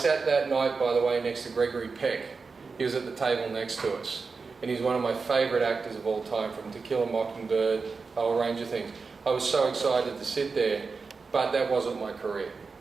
that night, by the way, next to Gregory Peck. He was at the table next to us. And he's one of my favourite actors of all time, from To Kill a Mockingbird, a whole range of things. I was so excited to sit there, but that wasn't my career.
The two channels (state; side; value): quieter; left; 4.6 dB